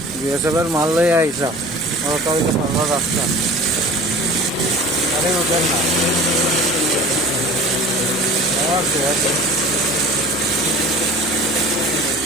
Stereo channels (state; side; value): normal; both; correlation 0.42